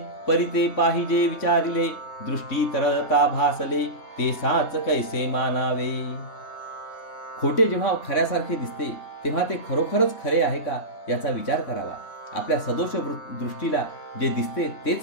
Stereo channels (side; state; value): right; late; 3.3 ms